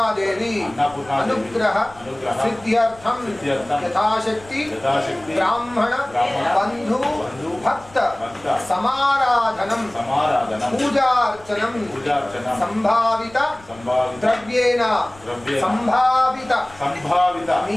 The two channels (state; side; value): noise; left; rumble, 24 dB below the sound